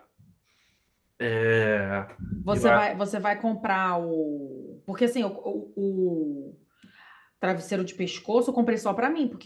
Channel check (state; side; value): identical; both; correlation 1.00